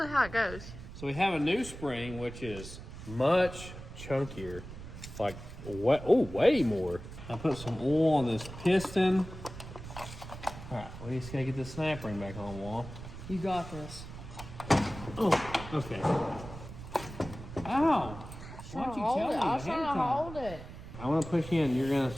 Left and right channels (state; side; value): noise; right; rumble, 12 dB below the sound